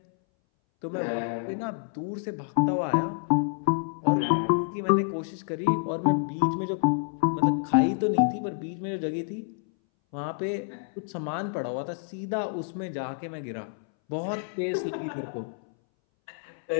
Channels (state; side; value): silent; right; 59 dB below the other